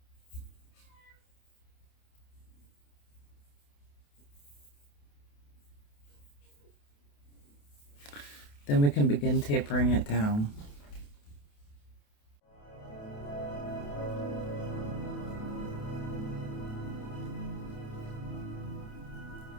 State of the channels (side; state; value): right; late; 28 ms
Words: Then we can begin tapering it down.